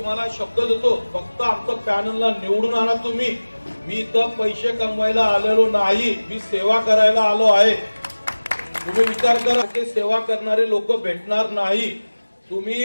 शब्द देतो, फक्त आमचं पॅनलला निवडून आणा तुम्ही. मी इथं पैसे कमवायला आलेलो नाही, मी सेवा करायला आलो आहे. तुम्ही विचार करा, की सेवा करणारे लोक भेटणार नाही.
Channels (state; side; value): inverted; both; correlation -1.00